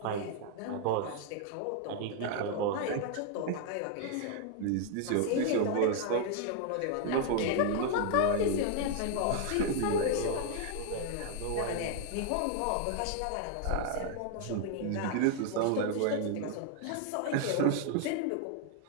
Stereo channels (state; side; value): different; both; correlation 0.00